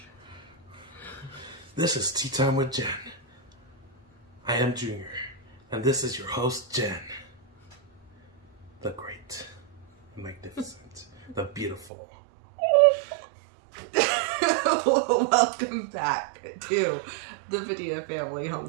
This is Tea Time with Jen. I am Junior, and this is your host, Jen. The great, the magnificent, the beautiful. Welcome back to the Padilla Family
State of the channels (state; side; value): drops out; left; at 11.9 s